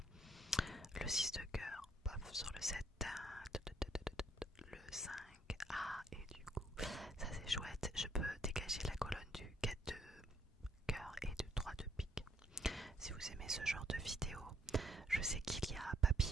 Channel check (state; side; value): normal; both; correlation 0.67